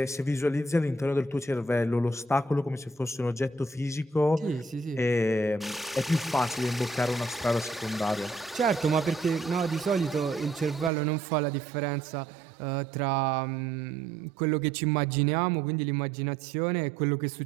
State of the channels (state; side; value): drops out; left; at 10.9 s